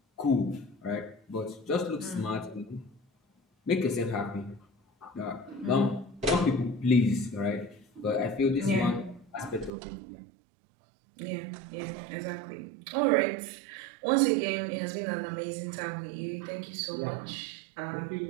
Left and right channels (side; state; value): left; drops out; at 9.7 s